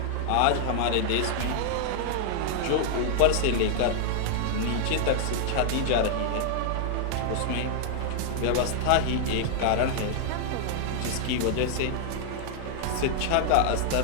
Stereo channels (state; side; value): different; both; correlation -0.01